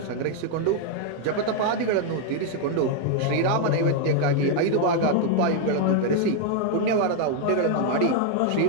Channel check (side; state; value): both; different; correlation 0.00